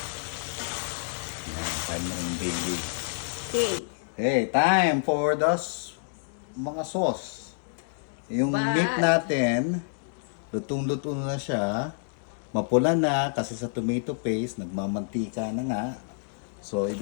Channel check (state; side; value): silent; right; digital silence